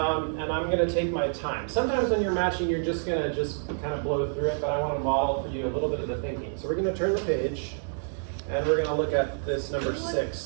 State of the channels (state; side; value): silent; left; digital silence